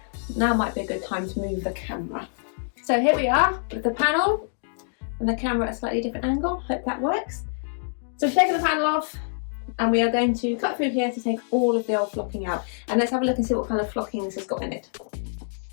Now might be a good time to move the camera. So here we are with the panel and the camera at a slightly different angle. Hope that works. So we've taken the panel off and we are going to cut through here to take all of the old flocking out. And let's have a look and see what kind of flocking this has got in it.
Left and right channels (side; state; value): right; silent; 61 dB below the other